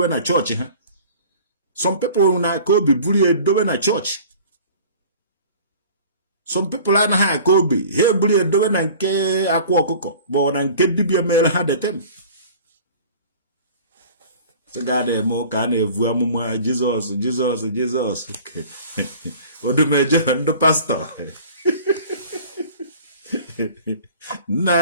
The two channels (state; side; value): inverted; both; correlation -0.45